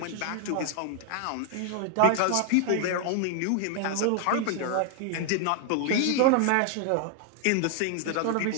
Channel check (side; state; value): both; different; correlation 0.00